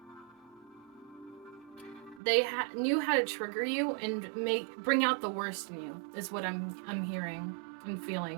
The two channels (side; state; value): left; drops out; at 2.2 s